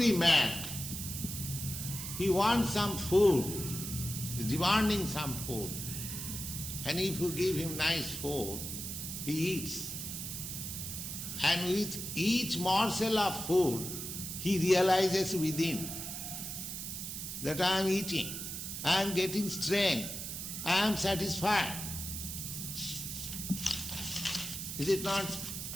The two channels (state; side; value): noise; right; hiss, 6 dB below the sound